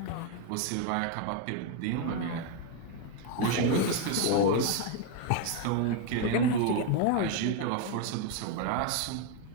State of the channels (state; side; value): different; both; correlation 0.02